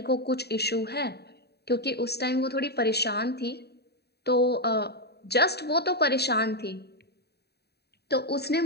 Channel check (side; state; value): right; late; 0.48 ms